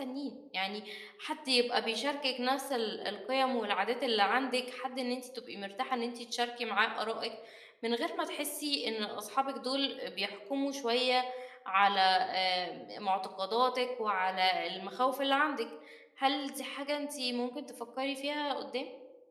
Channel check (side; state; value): both; identical; correlation 1.00